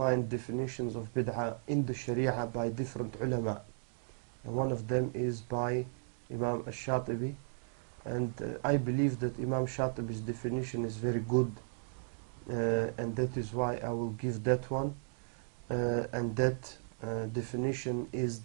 definitions of bid'ah in the Sharia by different ulama. And one of them is by Imam Al Sharkasi, and I believe that Imam Shatibi's definition is very good, and that is why I will give that one. And that definition is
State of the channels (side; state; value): left; silent; digital silence